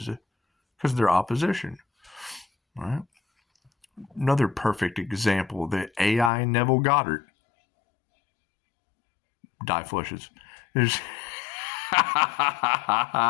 because they're opposition. All right. Another perfect example, the AI Neville Goddard. Die flushes. There's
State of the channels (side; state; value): right; drops out; at 6.3 s